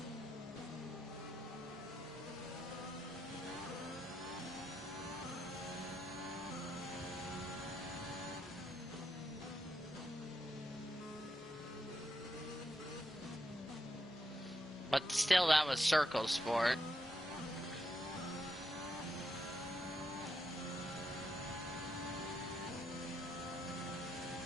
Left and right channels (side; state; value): both; normal; correlation 0.82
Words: But still, that was Circle Sport.